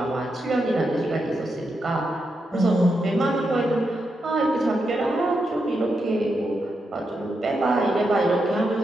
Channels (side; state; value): both; normal; correlation 0.85